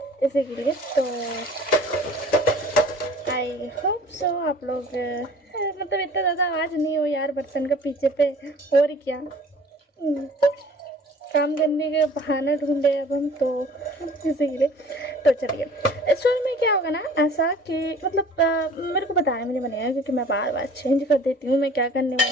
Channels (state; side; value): normal; both; correlation 0.49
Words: इसी के लिए। तो आई होप सो आप लोग मतलब इतना ज़्यादा आवाज़ नहीं हो यार बर्तन का पीछे पे, और क्या काम करने का बहाना ढूंढे अब हम तो इसीलिए। तो चलिए स्टोरी में क्या होगा ना, ऐसा कि मतलब मेरे को बताने में नहीं बनेगा, क्योंकि मैं बार बार चेंज कर देती हूँ, मैं क्या करने